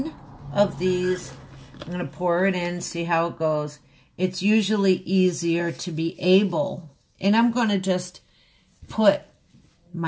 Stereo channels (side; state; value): both; identical; correlation 1.00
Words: of these. I'm going to pour it in, see how it goes. It's usually easier to be able, and I'm going to just put